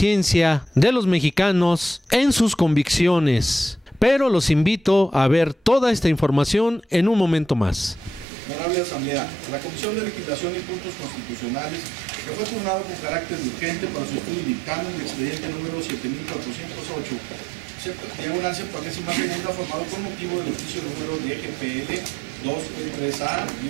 de los mexicanos en sus convicciones. Pero los invito a ver toda esta información en un momento más. Honorable Asamblea, la Comisión de Legislación y Puntos Constitucionales, que fue turnado con carácter urgente para su estudio y dictamen de expediente número 7408, diagonal 73ª, formado con motivo del oficio número de GPL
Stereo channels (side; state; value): left; drops out; at 8.2 s